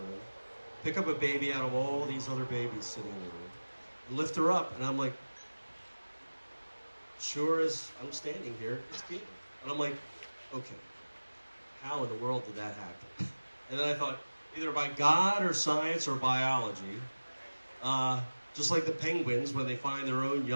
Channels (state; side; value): inverted; both; correlation -1.00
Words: pick up a baby out of all these other babies sitting in the room, and lift her up. And I'm like, sure as I'm standing here, it's Keely. And I'm like, okay, how in the world did that happen? And then I thought, either by God or science or biology, just like the penguins, when they find their own